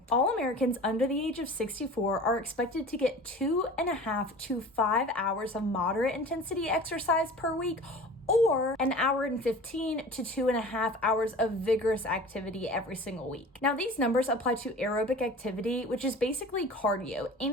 All Americans under the age of 64 are expected to get 2.5 to 5 hours of moderate intensity exercise per week, or an hour and 15 to 2.5 hours of vigorous activity every single week. Now, these numbers apply to aerobic activity, which is basically cardio,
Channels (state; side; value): normal; both; correlation 0.40